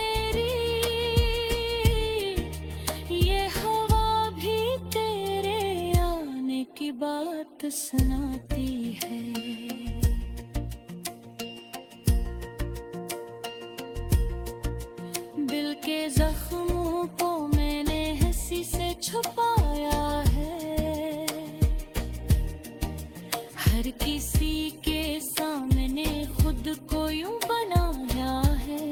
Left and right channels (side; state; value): both; identical; correlation 1.00